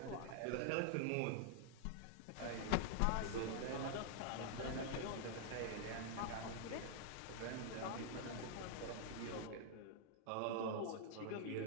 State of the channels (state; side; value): different; both; correlation 0.00